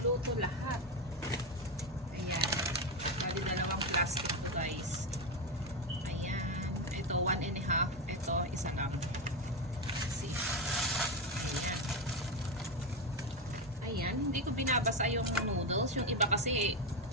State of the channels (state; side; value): normal; both; correlation 0.11